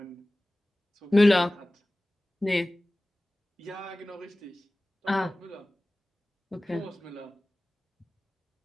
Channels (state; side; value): normal; both; correlation 0.98